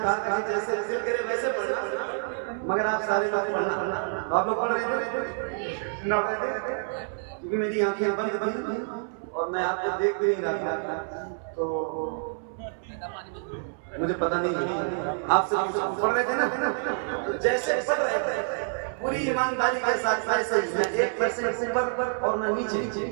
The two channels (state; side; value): silent; left; 60 dB below the other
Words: था कि जैसे दिल करे वैसे पढ़ना, मगर आप सारे बातें पढ़ना। आप लोग पढ़ रहे थे ना? पढ़ रहे थे क्योंकि मेरी आंखें बंद थी और मैं आपको देख भी नहीं रहा था, तो मुझे पता नहीं आप सब पढ़ रहे थे ना? तो जैसे पढ़ रहे थे पूरी ईमानदारी के साथ ऐसे 1% ऊपर और न नीचे,